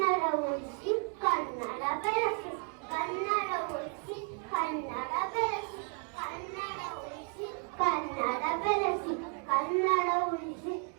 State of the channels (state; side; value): quieter; left; 37.9 dB